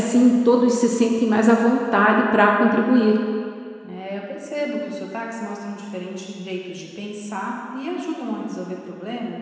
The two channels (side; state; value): both; identical; correlation 1.00